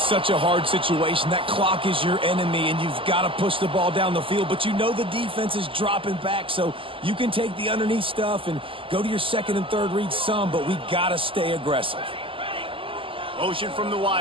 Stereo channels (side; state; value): left; late; 0.26 ms